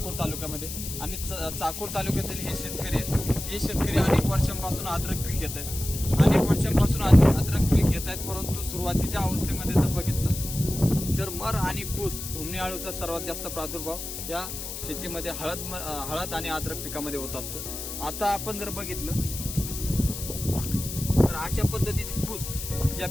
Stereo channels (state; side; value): noise; left; hiss, 7 dB below the sound